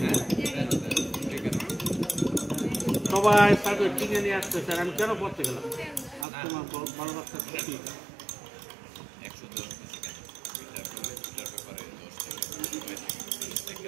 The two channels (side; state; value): left; drops out; at 6.2 s